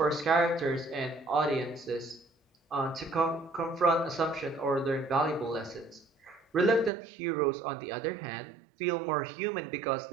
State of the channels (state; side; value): drops out; left; at 6.9 s